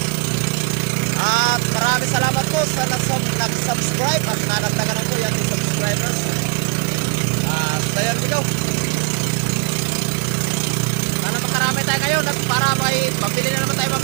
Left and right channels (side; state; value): left; quieter; 27.2 dB